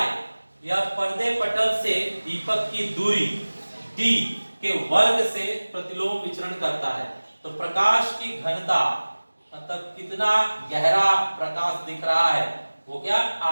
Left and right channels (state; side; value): inverted; both; correlation -1.00